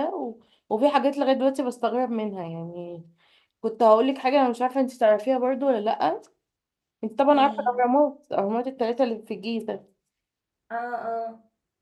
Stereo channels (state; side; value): identical; both; correlation 1.00